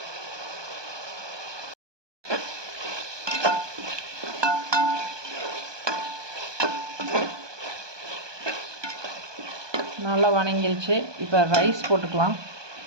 நல்லா வணங்கிருச்சு. இப்போ ரைஸ் போட்டுக்கலாம்.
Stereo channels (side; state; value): left; late; 1.2 ms